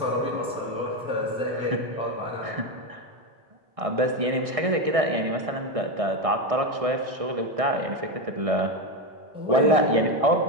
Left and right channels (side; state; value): left; late; 1.6 ms